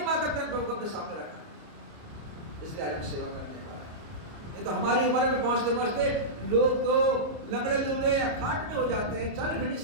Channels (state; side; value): late; left; 29 ms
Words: माता पिता ने प्रभु को अपने सामने रखा, इसलिए आज हम सेवा करने वाले हैं। नहीं तो हमारी उम्र में पहुंचते पहुंचते लोग तो लंगड़े लूले या खाट में हो जाते हैं, चल फिर नहीं